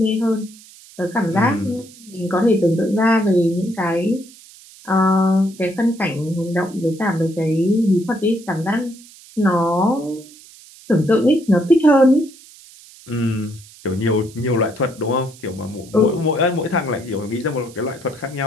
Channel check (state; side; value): noise; right; hiss, 22 dB below the sound